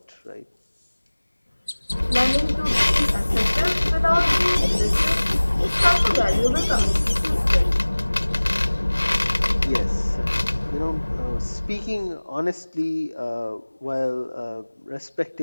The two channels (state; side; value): inverted; both; correlation -1.00